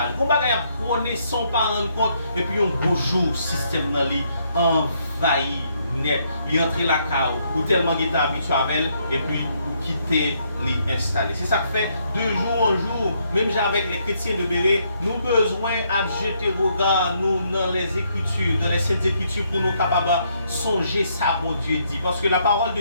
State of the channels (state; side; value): inverted; both; correlation -0.73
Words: On va prôner sans pas rendre compte. Et puis, un beau jour, le système dans lui envahit net. Il entre la cave ou tellement qu'il est habitué avec elle. Et puis, quitter les installer. C'est ça que fait de jour en jour, même avec les chrétiens de Béret, nous besoin de jeter regard nous dans les Écritures, dans les Saintes Écritures pour nous capables de songer ça, bon Dieu dit. Parce que la parole de